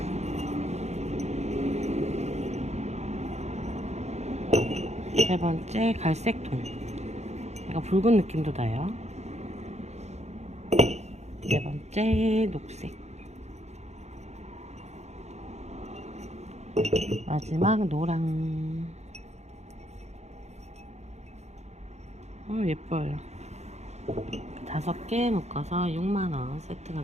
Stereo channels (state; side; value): late; left; 0.32 ms